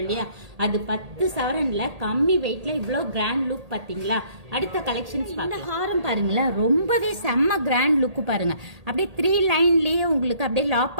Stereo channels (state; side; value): late; left; 1.8 ms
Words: இல்லையா, அது 10 சவரன்ல கம்மி வெயிட்ல இவ்வளவு கிராண்ட் லுக் பாத்தீங்களா? அடுத்த கலெக்ஷன்ஸ் இந்த ஹாரம் பாருங்களேன், ரொம்பவே செம்ம கிராண்ட் லுக் பாருங்க. அப்படியே 3 லைன்லயே உங்களுக்கு அப்படியே